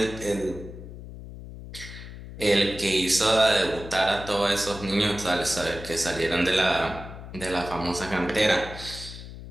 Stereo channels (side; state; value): left; noise; hum, 13 dB below the sound